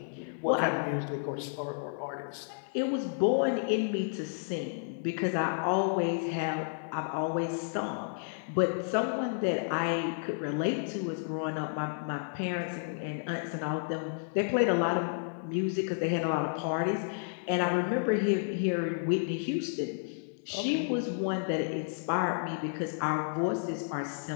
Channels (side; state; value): right; silent; digital silence